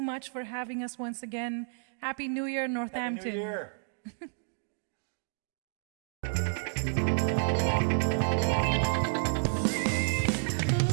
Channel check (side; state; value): left; silent; digital silence